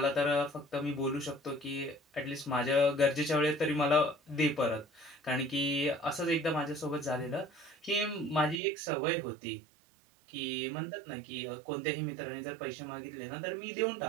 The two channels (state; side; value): drops out; left; at 8.6 s